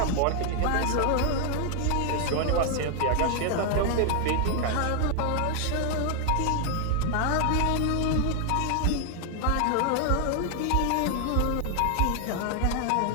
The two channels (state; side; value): different; both; correlation 0.00